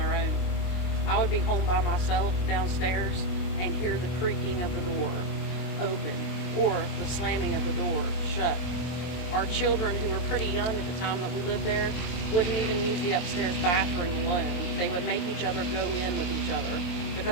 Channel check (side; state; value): right; late; 23 ms